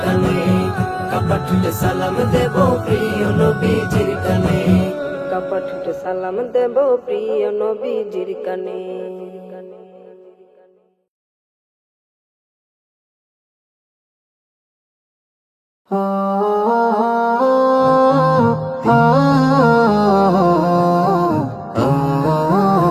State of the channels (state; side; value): identical; both; correlation 1.00